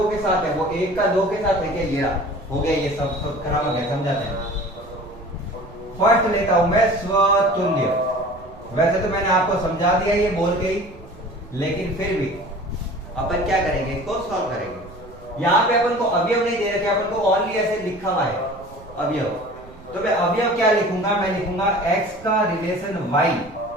के साथ है, वो 1 का 2 के साथ है क्या? ये हो गया, ये सब संक्रामक है। समझाते हैं। फर्स्ट लेता हूं मैं स्वतुल्य। वैसे तो मैंने आपको समझा दिया ये बोल के ही, लेकिन फिर भी अपन क्या करेंगे, इसको सॉल्व करेंगे। यहाँ पे अपन को अवयव नहीं दे रखे, अपन को ओनली ऐसे लिखा हुआ है अवयव। तो मैं अवयव क्या लिखूंगा, मैं लिखूंगा x का रिलेशन y,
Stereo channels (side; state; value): right; noise; rumble, 21 dB below the sound